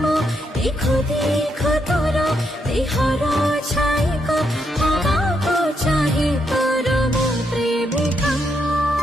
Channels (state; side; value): normal; both; correlation 0.79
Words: মো দেখো দেখো তোর দেহর ছাইক হওয়াকু চাহে তোর মো প্রেমিকা